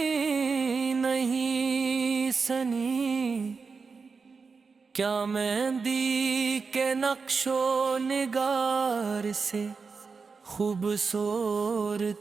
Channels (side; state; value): left; quieter; 4.9 dB